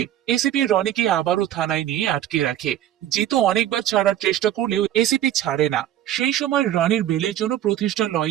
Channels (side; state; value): left; quieter; 11.9 dB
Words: এসিপি রনিকে আবারও থানায় নিয়ে আটকে রাখে। জিতু অনেকবার ছাড়ার চেষ্টা করলেও এসিপি ছাড়ে না। সেই সময় রনির বেলের জন্য প্রতিষ্ঠা